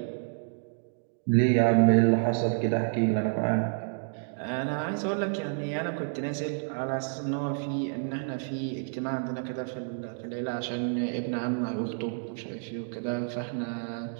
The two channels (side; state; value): left; silent; digital silence